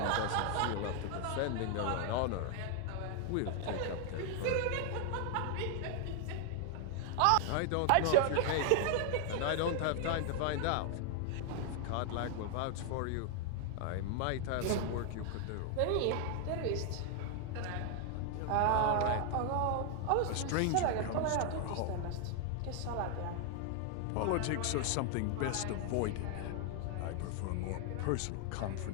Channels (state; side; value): different; both; correlation 0.00